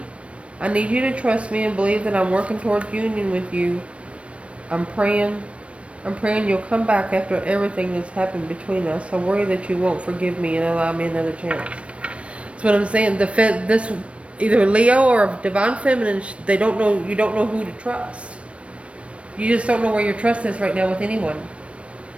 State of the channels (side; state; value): left; late; 0.061 ms